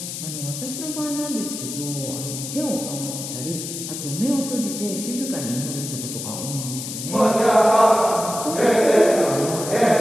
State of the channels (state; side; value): noise; left; hiss, 7 dB below the sound